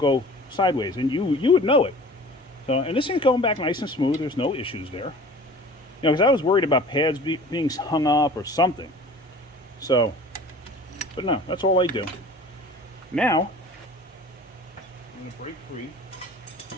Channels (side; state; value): both; normal; correlation 0.43